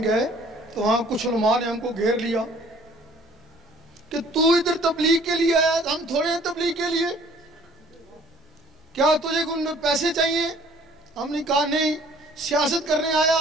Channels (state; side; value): normal; both; correlation 0.55